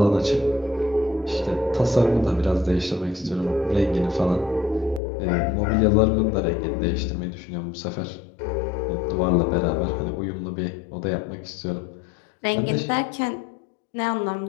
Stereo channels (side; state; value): right; drops out; at 5.0 s